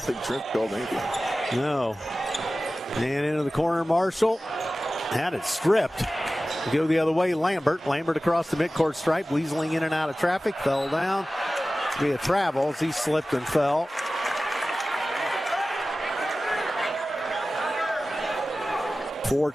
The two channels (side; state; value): both; normal; correlation 0.96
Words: think Trent called anything. No. And into the corner, Marshall. Had it stripped. Go the other way, Lambert. Lambert across the midcourt stripe, weaseling in and out of traffic. Fell down. Via travels. He slipped and fell.